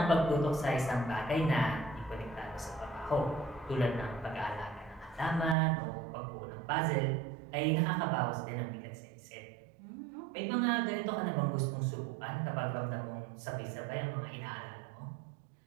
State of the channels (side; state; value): left; drops out; at 5.6 s